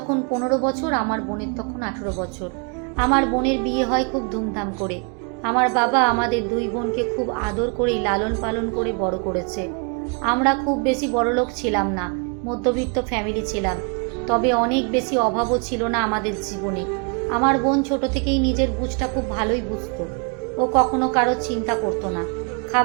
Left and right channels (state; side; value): quieter; left; 36.1 dB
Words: 15 বছর, আমার বোনের তখন 18 বছর। আমার বোনের বিয়ে হয় খুব ধুমধাম করে। আমার বাবা আমাদের দুই বোনকে খুব আদর করেই লালন পালন করে বড় করেছে। আমরা খুব বেশি বড়লোক ছিলাম না, মধ্যবিত্ত ফ্যামিলি ছিলাম। তবে অনেক বেশি অভাবও ছিল না আমাদের জীবনে। আমার বোন ছোট থেকেই নিজের বুঝটা খুব ভালোই বুঝতো। ও কখনো কারো চিন্তা করতো না।